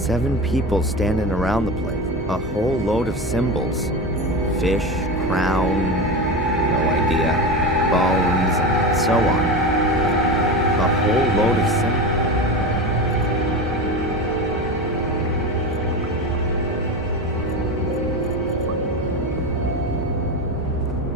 people standing around the place. A whole load of symbols. Fish, crown, no idea. Bones, and so on. A whole load of symbols.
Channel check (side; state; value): both; normal; correlation 0.23